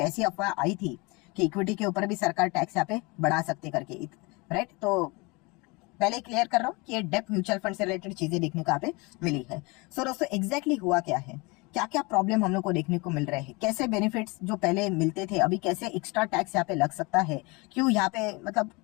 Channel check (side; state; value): right; quieter; 26.8 dB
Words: अफवाह आई थी कि इक्विटी के ऊपर भी सरकार टैक्स यहाँ पे बढ़ा सकती करके। राइट, तो पहले क्लियर कर रहा हूँ कि ये डेप्ट म्यूचुअल फंड से रिलेटेड चीजें देखने को यहाँ पे मिली है। सो दोस्तों एग्जैक्टली हुआ क्या है, क्या क्या प्रॉब्लम हम लोग को देखने को मिल रहे हैं, कैसे बेनिफिट्स जो पहले मिलते थे अभी कैसे एक्स्ट्रा टैक्स यहाँ पे लग सकता है, क्यों यहाँ पे मतलब